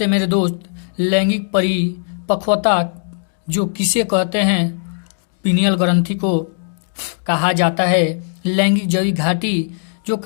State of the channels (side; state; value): right; silent; digital silence